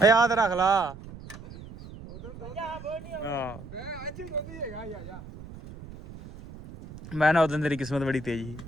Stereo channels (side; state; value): right; noise; rumble, 15 dB below the sound